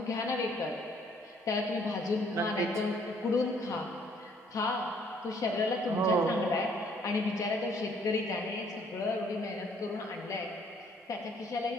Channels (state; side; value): normal; both; correlation 0.63